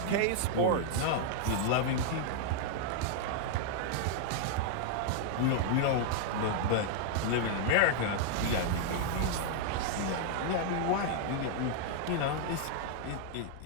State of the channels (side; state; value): both; different; correlation 0.00